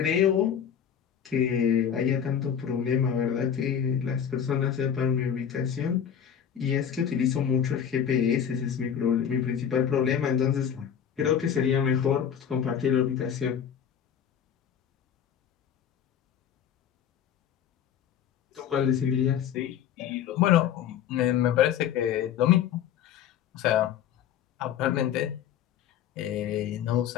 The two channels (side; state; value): right; quieter; 8.7 dB